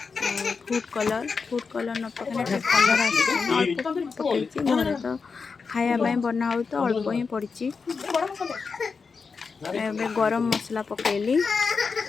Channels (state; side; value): quieter; right; 5.1 dB